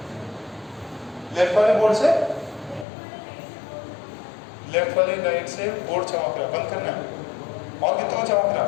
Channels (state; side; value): drops out; right; at 2.9 s